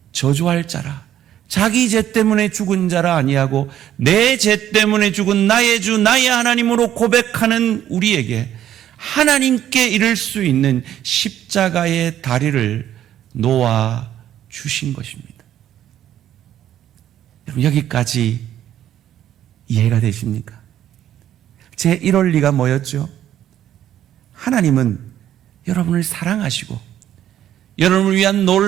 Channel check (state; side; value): quieter; left; 11.4 dB